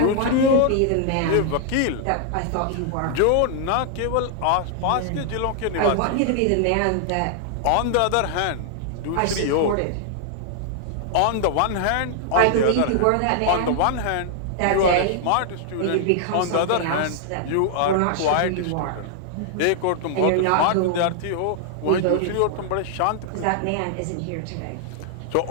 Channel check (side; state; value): both; different; correlation 0.00